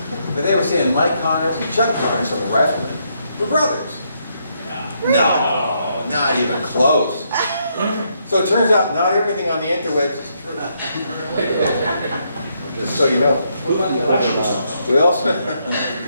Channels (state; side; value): inverted; both; correlation -0.76